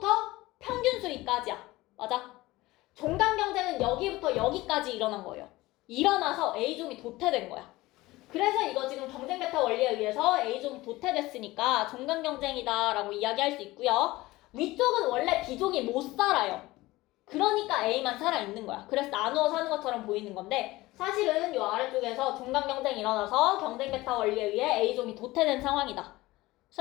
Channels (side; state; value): right; quieter; 19.1 dB